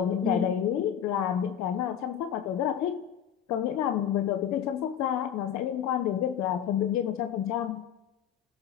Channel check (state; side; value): quieter; right; 9.1 dB